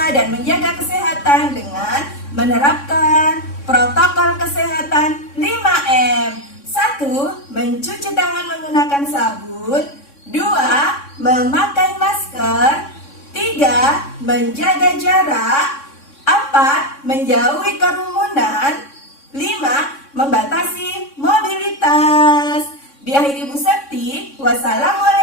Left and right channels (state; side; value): late; right; 3.6 ms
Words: dan menjaga kesehatan dengan menerapkan protokol kesehatan 5M. 1. Mencuci tangan menggunakan sabun. 2. Memakai masker. 3. Menjaga jarak. 4. Menjauhi kerumunan. 5. Membatasi mobilitas. Diakhiri Bu Septi,